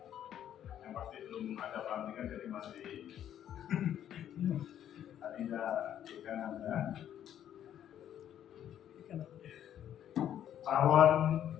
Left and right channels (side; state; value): right; quieter; 10.5 dB